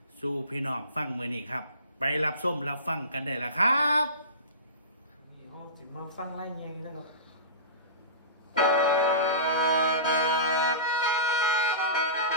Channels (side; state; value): both; inverted; correlation -0.31